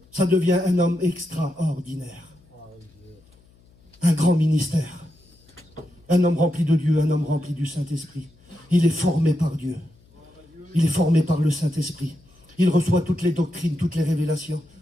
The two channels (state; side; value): noise; left; hum, 29 dB below the sound